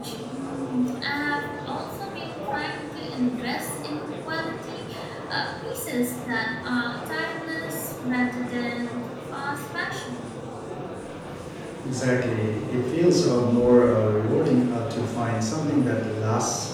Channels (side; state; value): both; identical; correlation 1.00